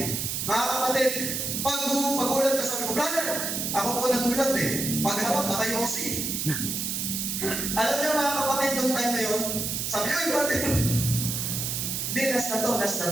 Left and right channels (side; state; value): right; noise; hiss, 2 dB below the sound